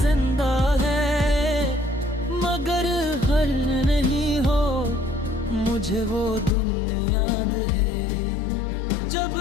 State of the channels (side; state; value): right; drops out; at 6.5 s